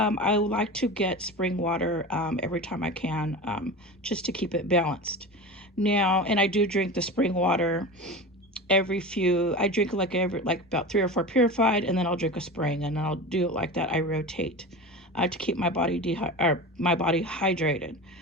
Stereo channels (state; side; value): normal; both; correlation 0.29